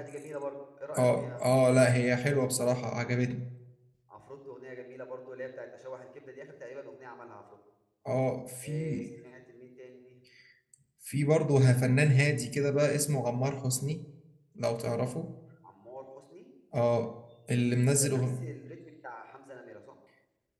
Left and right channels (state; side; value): identical; both; correlation 1.00